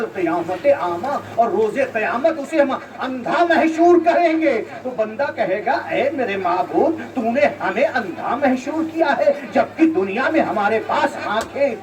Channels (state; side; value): identical; both; correlation 1.00